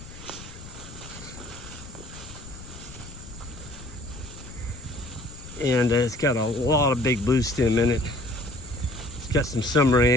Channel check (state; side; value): noise; left; rumble, 15 dB below the sound